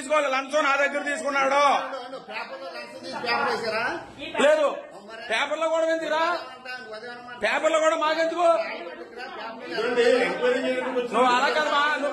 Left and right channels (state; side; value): identical; both; correlation 1.00